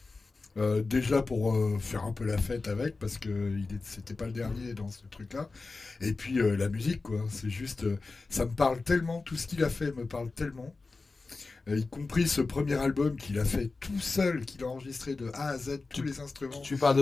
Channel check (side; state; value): right; quieter; 3.8 dB